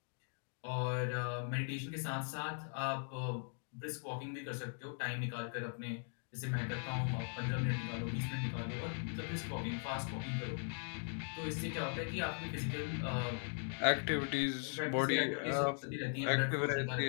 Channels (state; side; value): silent; right; 51 dB below the other